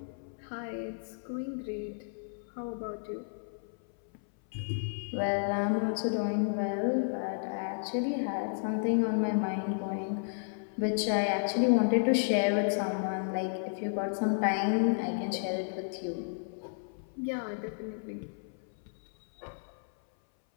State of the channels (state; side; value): silent; right; 56 dB below the other